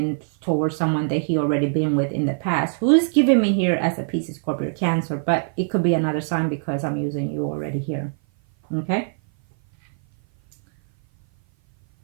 towards someone that he already been with in the past. Who's giving me here as a Pisces, Scorpio, Cancer, but it could be another sign because I'm using you already here. Okay.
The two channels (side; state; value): left; silent; 57 dB below the other